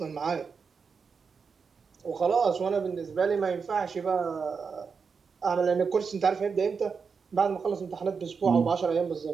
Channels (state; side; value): quieter; left; 5.6 dB